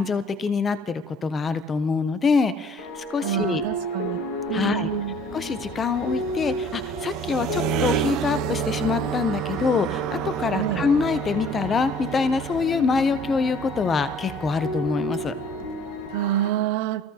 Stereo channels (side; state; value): both; normal; correlation 0.55